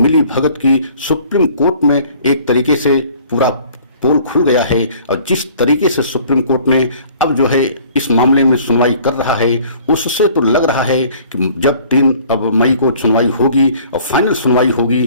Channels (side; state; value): both; inverted; correlation -0.53